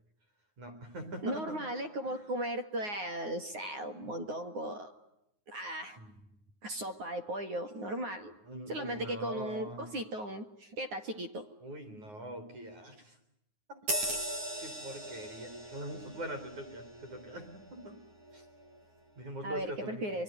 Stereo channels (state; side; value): late; left; 9.6 ms